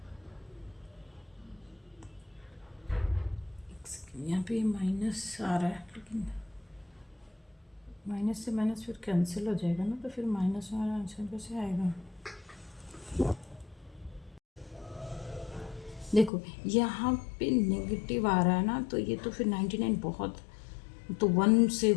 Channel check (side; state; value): right; drops out; at 16.3 s